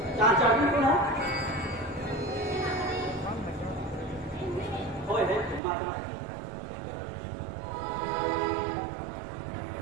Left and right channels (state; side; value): drops out; left; at 5.6 s